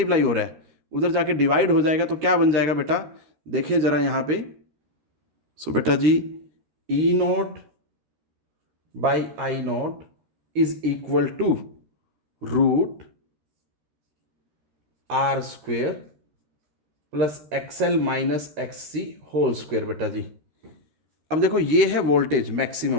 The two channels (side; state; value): left; late; 13 ms